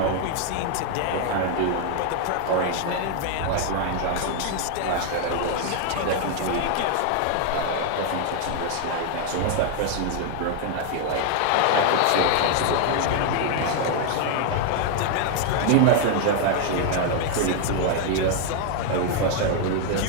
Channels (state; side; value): different; both; correlation 0.00